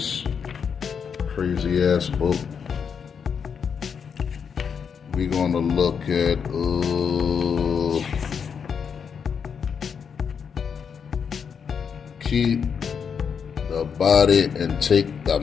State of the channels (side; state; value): right; quieter; 6.7 dB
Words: crazy ass book. We're gonna look at keep the body and take the